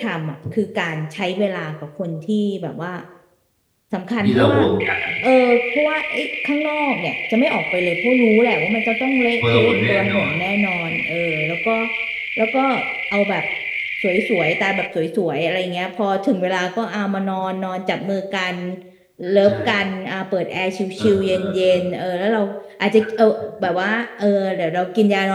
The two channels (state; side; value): identical; both; correlation 1.00